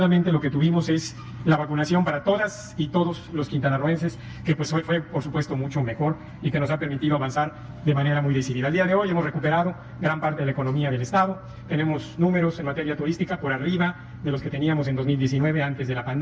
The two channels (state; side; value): identical; both; correlation 1.00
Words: lo que tuvimos es la vacunación para todas y todos los quintanarroenses, que pues fue por supuesto mucho mejor y que nos ha permitido avanzar de manera muy decidida. Al día de hoy hemos recuperado gran parte de la economía del Estado, tenemos números en materia turística por arriba de los que teníamos en 2019 antes de la